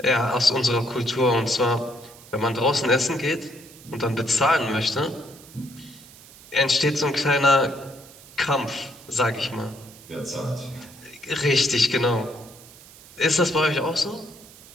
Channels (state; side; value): noise; right; hiss, 21 dB below the sound